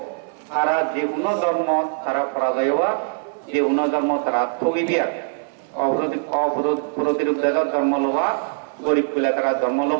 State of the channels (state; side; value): silent; left; 64 dB below the other